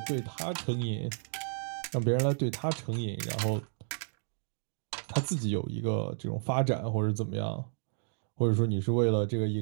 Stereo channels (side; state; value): left; silent; digital silence